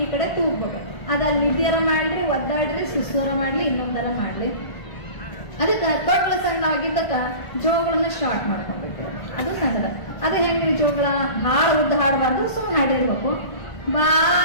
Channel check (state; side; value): late; right; 1.5 ms